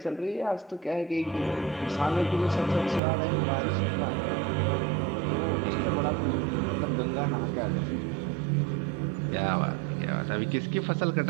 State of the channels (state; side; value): drops out; left; at 3.0 s